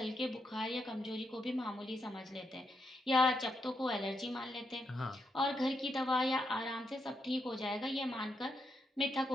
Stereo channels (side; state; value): both; normal; correlation 0.81